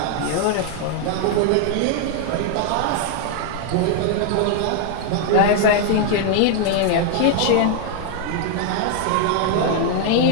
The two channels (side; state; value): both; different; correlation 0.00